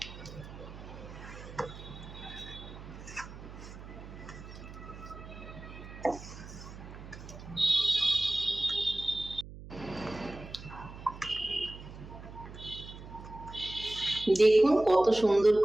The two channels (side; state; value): right; noise; hum, 14 dB below the sound